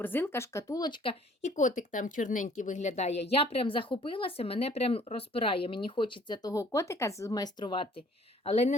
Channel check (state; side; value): normal; both; correlation 0.57